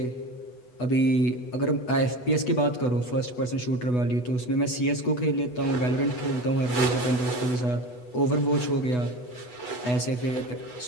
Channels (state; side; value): late; right; 8.1 ms